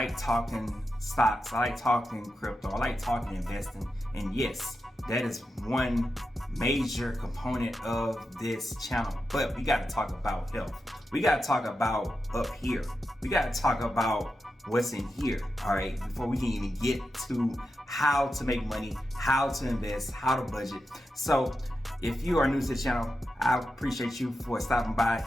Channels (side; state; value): both; normal; correlation 0.89